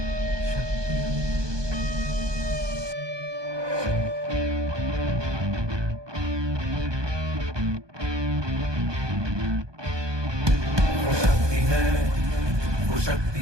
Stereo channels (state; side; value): late; left; 1.2 ms